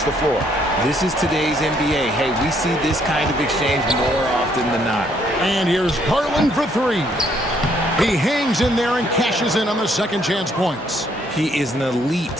the floor. This is today's NBA. Hey, we see this kind of exchange more often than not. And here's Garland for 3. He hangs in there and cashes in on the second chance points. He is an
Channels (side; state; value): both; normal; correlation 0.68